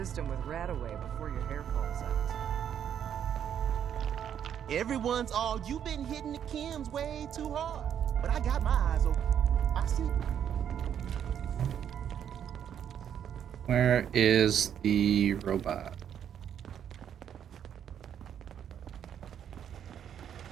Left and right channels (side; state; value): left; quieter; 9.1 dB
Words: with Radaway before your hair falls out. Everyone's all, you've been hitting the chems way too hard. But I got my eyes open. I see. where is the robot?